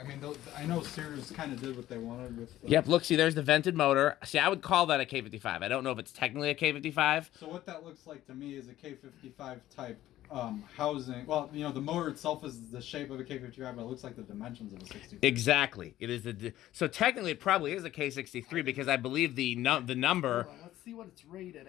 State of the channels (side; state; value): right; quieter; 14.1 dB